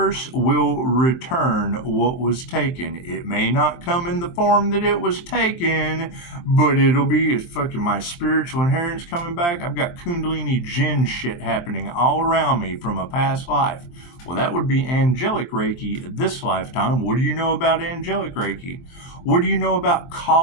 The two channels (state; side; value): late; right; 23 ms